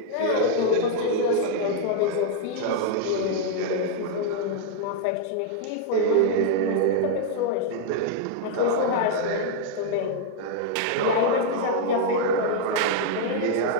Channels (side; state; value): both; different; correlation 0.00